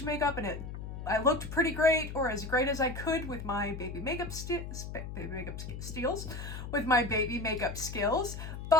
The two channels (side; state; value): left; noise; hum, 8 dB below the sound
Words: makeup, and I looked pretty great, or as great as I could with my baby makeup skills,